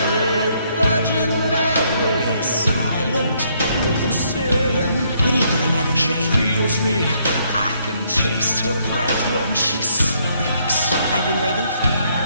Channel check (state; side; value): inverted; both; correlation -0.70